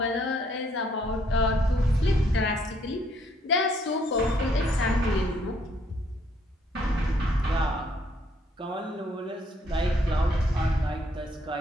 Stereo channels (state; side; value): normal; both; correlation 0.68